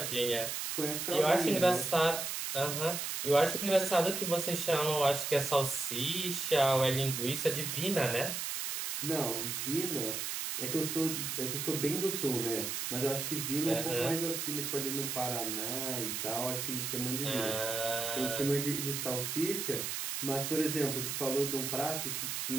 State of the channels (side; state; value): right; noise; hiss, 3 dB below the sound